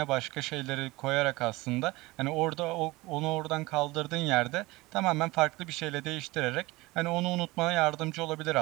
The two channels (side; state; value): left; quieter; 21.1 dB